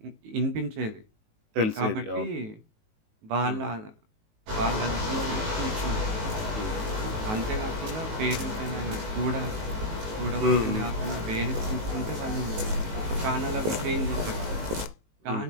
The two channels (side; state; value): left; late; 19 ms